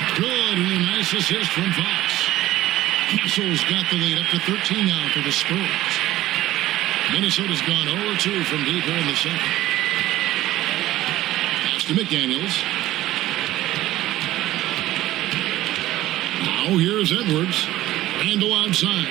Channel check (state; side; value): quieter; left; 15.4 dB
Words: Good and a nice assist from Fox. Castle's got the lead up to 13 now for the Spurs. Minnesota's gone 0-2 from deep here in the second. Pass to McDaniels. Now here's Edwards. Randle outside.